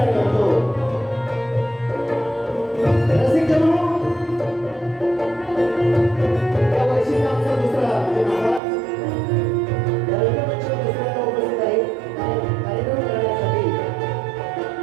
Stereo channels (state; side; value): drops out; left; at 8.6 s